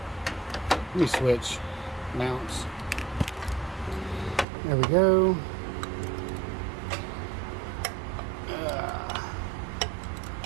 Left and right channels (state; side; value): drops out; left; at 4.5 s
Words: Let me switch mounts. There we go.